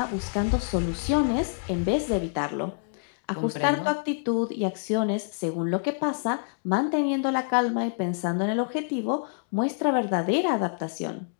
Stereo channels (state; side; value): silent; right; 60 dB below the other